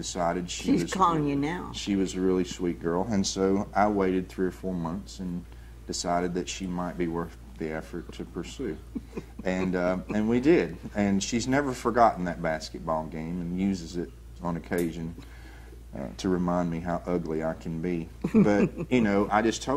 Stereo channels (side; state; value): both; identical; correlation 1.00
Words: she's calling you now. She was a really sweet girl, and so I waited 3 or 4 months and decided that she might be worth the effort to pursue. And we did. And she's never forgotten that basketball game and uses it on occasion to remind me how ugly I can be. But, I just